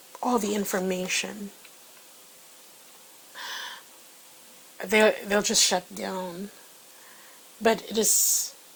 all the information, they'll just shut down. But it is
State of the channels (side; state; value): both; identical; correlation 1.00